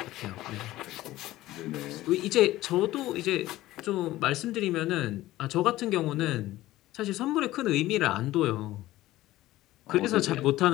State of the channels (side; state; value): right; quieter; 16.2 dB